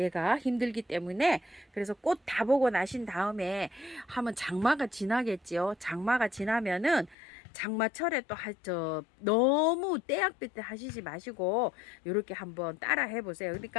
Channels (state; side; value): drops out; right; at 7.2 s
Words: 힘들기 때문에. 그래서 꽃 다 보고 나신 다음에 하면 장마가 지나겠지요. 장마가 지나면은 장마철에 또 너무 떼약볕 때 하시지 마시고 이렇게 한번 따라 해보세요.